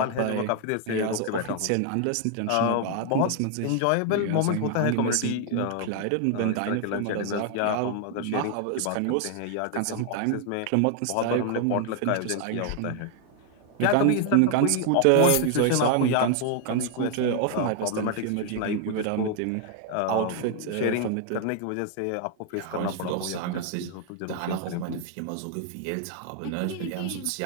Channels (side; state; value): both; different; correlation 0.00